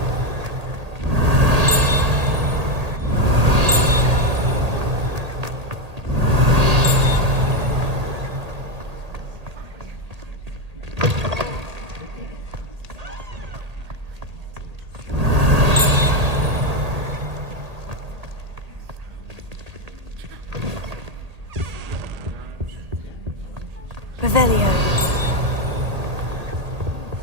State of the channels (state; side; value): late; left; 1.8 ms